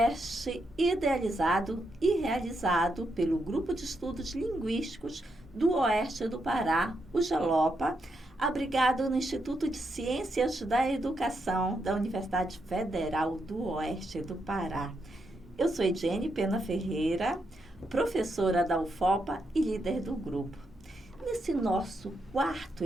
idealizado e realizado pelo Grupo de Estudos Linguísticos do Oeste do Pará, o GELOPA, abrigado no Instituto de Ciências da Educação da Universidade Federal do Oeste do Pará. Eu sou Ediene Pena Ferreira, professora da UFOPA e líder do grupo. Nesse nosso quarto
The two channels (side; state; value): both; normal; correlation 0.81